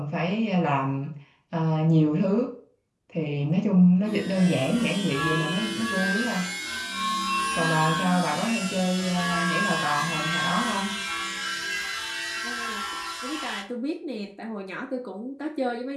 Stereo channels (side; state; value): both; identical; correlation 1.00